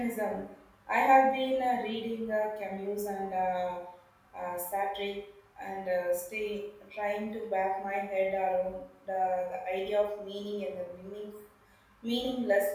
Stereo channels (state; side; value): identical; both; correlation 1.00